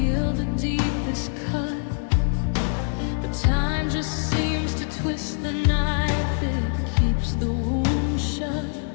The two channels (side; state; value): right; silent; digital silence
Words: the deepest cut, but time just seems to twist the knife. It keeps the wound shut,